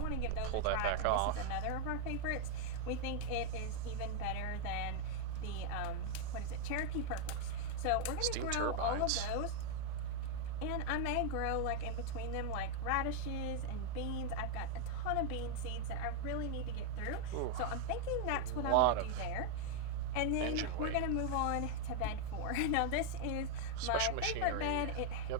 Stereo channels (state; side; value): different; both; correlation 0.00